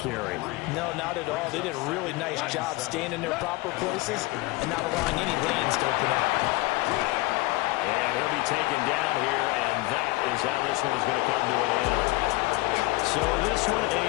No, not at all. They did a really nice job staying in their proper places and not allowing any lanes to open up. And he'll be taken down here, and that is how this one is going to come to an end. So this one a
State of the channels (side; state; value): right; quieter; 21.9 dB